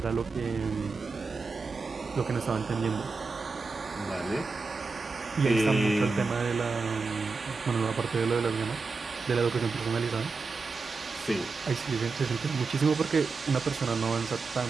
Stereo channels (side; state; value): left; quieter; 4.2 dB